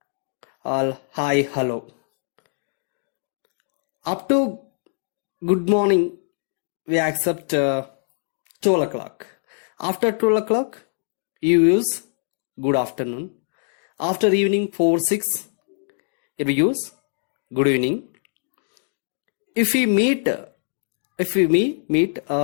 hi, hello. Up to good morning, we accept 12 o'clock. After 12 o'clock, you use good afternoon. After evening 4, 6, here we use good evening. If we meet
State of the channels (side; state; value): right; silent; digital silence